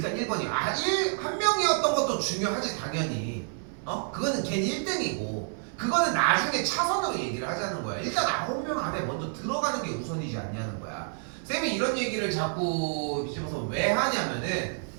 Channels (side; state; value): left; silent; 59 dB below the other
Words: 1번이 한 명이었던 것도 중요하지 당연히. 그거는 걔는 1등이고 그거는 나중에 차선으로 얘기를 하자는 거야. 일단 9명 안에 먼저 들어가는 게 우선이지 않냐는 거야. 쌤이 이런 얘기를 자꾸 비집어서 왜 하냐면은